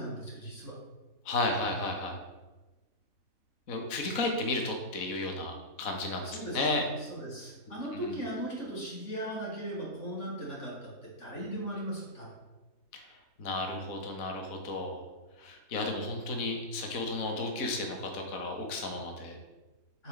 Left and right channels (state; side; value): late; right; 4.0 ms